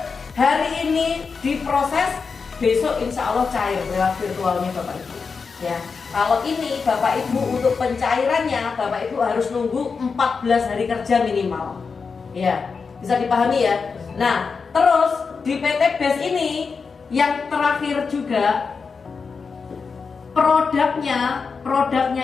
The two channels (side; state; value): right; quieter; 5.1 dB